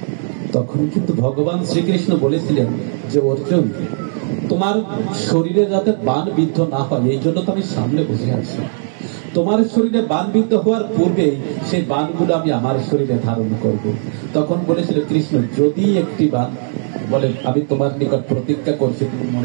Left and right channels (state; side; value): silent; left; digital silence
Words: তখন কিন্তু ভগবান শ্রীকৃষ্ণ বলেছিলেন যে অর্জুন, তোমার শরীরে যাতে বাণ বিদ্ধ না হয় এই জন্য তো আমি সামনে বসে আছি। তোমার শরীরে বাণ বিদ্ধ হওয়ার পূর্বে সেই বাণগুলো আমি আমার শরীরে ধারণ করব। তখন বলেছিল কৃষ্ণ, যদি একটি বাণ বলে, আমি তোমার নিকট প্রতিজ্ঞা করছি, তুমি